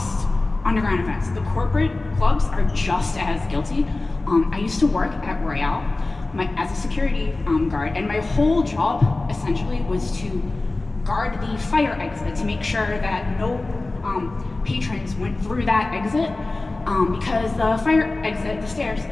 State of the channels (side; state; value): right; quieter; 3.2 dB